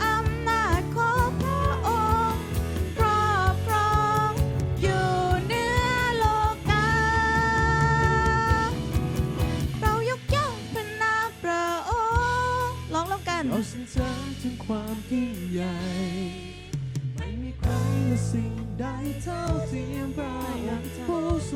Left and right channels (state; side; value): identical; both; correlation 1.00